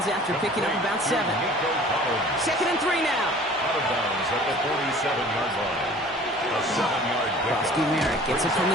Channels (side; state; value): both; normal; correlation 0.48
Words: after picking up about 7. 2nd and 3 now. Out of bounds at the 47-yard line. A 7-yard pickup. Krosky-Merritt gets it from